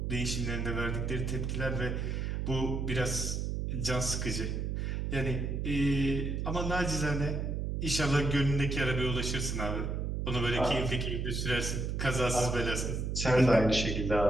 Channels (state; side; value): noise; right; hum, 1 dB below the sound